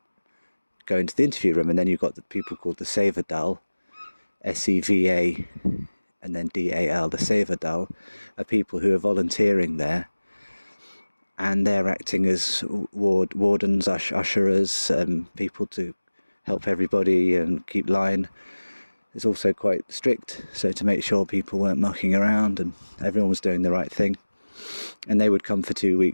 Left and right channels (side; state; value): both; inverted; correlation -1.00